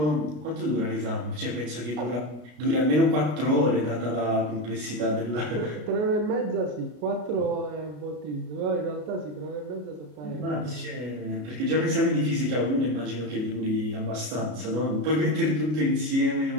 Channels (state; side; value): late; left; 33 ms